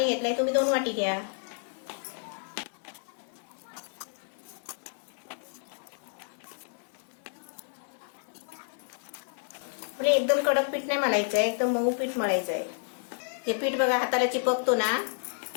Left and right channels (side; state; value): right; silent; digital silence